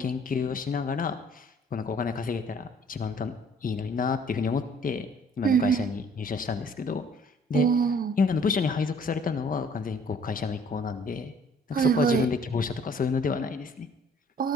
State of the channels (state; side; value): normal; both; correlation 0.57